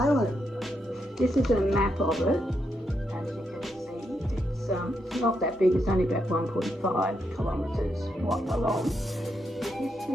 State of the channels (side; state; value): both; normal; correlation 0.81